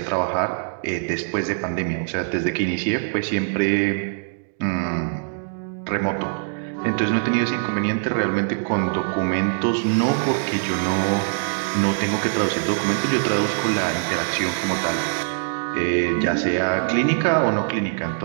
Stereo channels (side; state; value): left; silent; digital silence